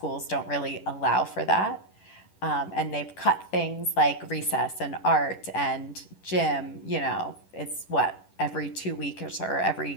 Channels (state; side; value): late; right; 10 ms